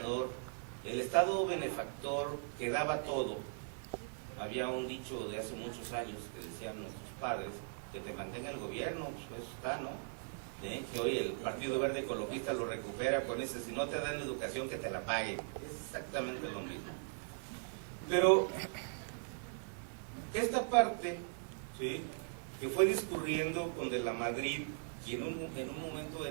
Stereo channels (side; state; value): left; silent; 52 dB below the other